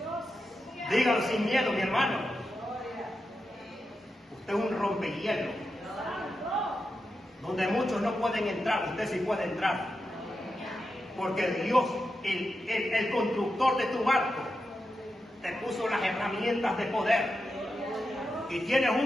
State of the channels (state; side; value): normal; both; correlation 0.89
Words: Dígalo sin miedo, mi hermano. Usted es un rompehielo. Donde muchos no pueden entrar, usted sí puede entrar. Porque Dios, el constructor de tu barco, te puso las herramientas de poder. Y tienes